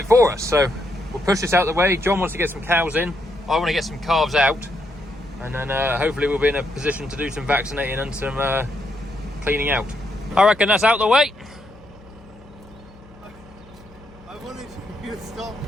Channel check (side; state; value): left; noise; hum, 24 dB below the sound